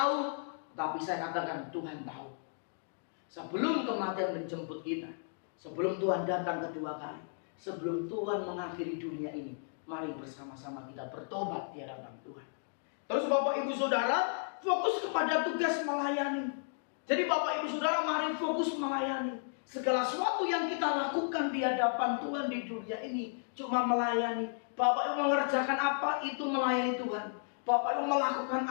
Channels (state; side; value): silent; right; digital silence